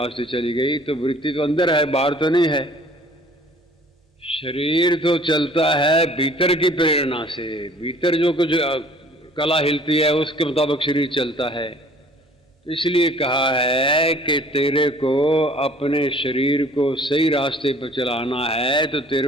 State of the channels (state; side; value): normal; both; correlation 0.53